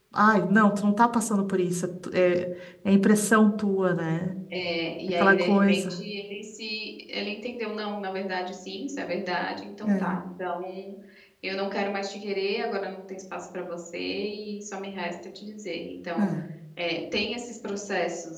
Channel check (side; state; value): both; identical; correlation 1.00